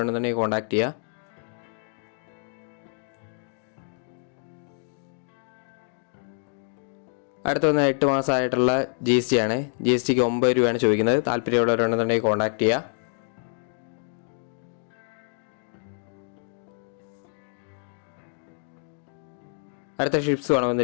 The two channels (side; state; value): right; silent; 60 dB below the other